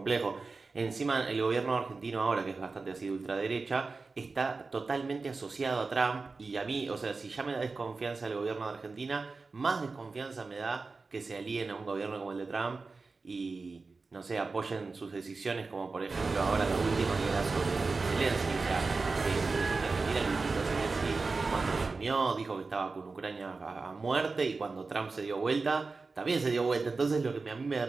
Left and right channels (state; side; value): quieter; left; 4.0 dB